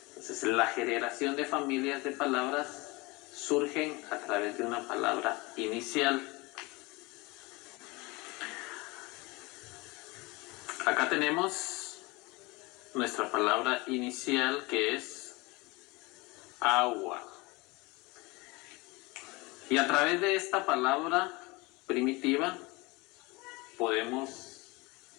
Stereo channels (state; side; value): quieter; right; 24.6 dB